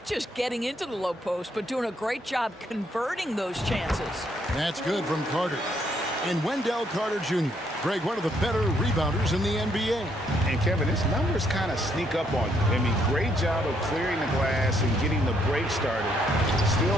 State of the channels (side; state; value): both; normal; correlation 0.71